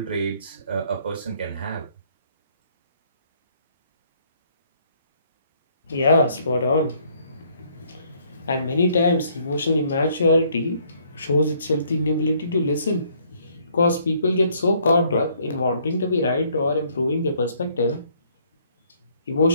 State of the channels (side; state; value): both; inverted; correlation -0.65